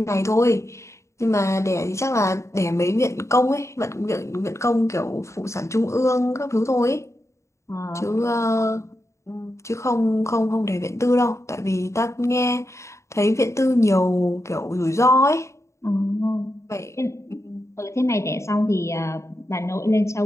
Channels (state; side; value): late; right; 0.14 ms